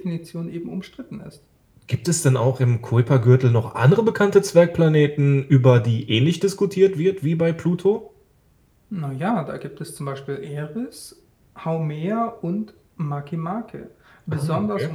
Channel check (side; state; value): both; identical; correlation 1.00